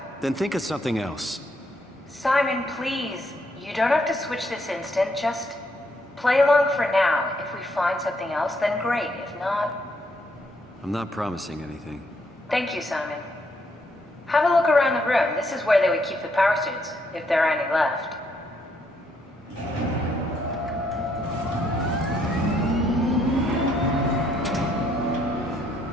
Then think of something else. Simon, please. You don't have to switch this instant. Just play along for now. If we find something else, then great. If not... I'm not promising anything. Thank you, Simon. Have a look around the room. This is where they would keep the power suits, if there are any left.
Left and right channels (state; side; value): normal; both; correlation 0.73